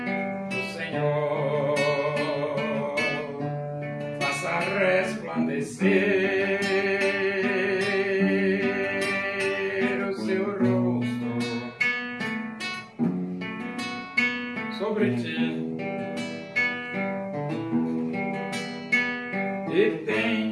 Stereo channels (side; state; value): both; identical; correlation 1.00